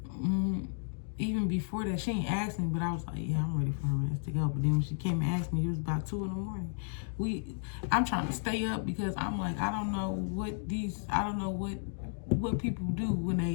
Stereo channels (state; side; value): silent; right; digital silence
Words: Even before that, she ain't asked me, but I was like, yeah, I'm ready for her ass to go. But then when she came and asked me, it was about 2 in the morning. I'm trying to stay up because I'm like, I don't know what people do when